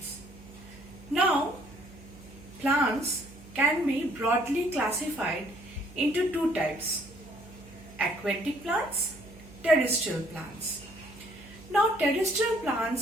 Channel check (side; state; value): right; noise; hum, 21 dB below the sound